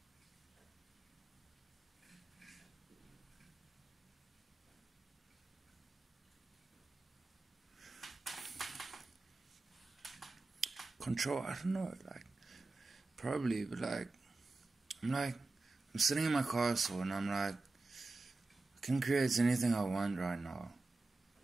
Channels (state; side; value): quieter; left; 3.4 dB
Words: Control, I don't know, like, probably, but like, I'm sitting in my castle and I'm like, can create anything I want right now.